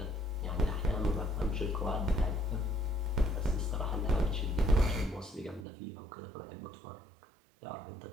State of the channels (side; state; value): left; drops out; at 5.7 s